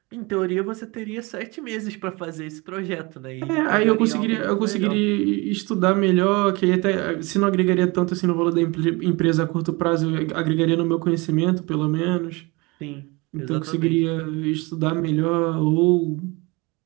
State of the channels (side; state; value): left; quieter; 25.9 dB